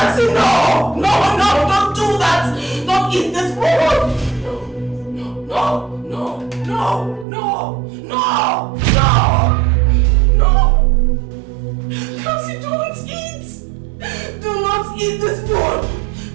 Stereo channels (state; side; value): drops out; left; at 7.2 s